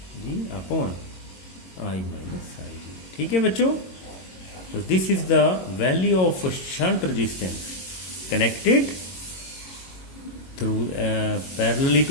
अपॉन आई माइनस आई जी। ठीक है बच्चों, तो this is the value of shunt resistance connected through parallelly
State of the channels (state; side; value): late; right; 22 ms